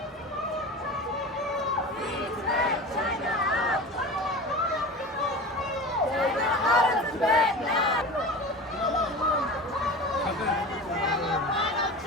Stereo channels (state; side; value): normal; both; correlation 0.32